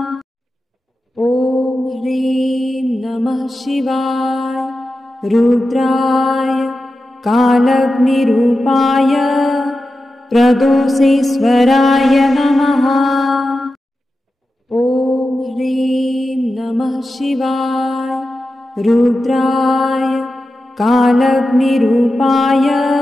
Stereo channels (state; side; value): normal; both; correlation 0.92